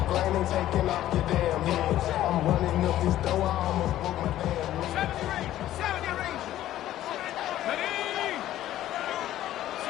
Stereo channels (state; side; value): quieter; right; 13.3 dB